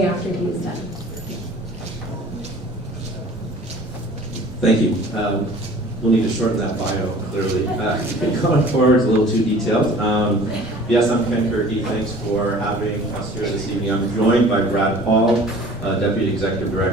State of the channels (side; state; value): both; normal; correlation 0.47